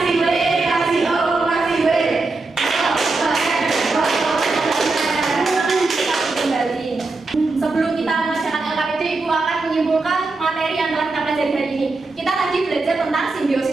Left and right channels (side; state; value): left; quieter; 3.5 dB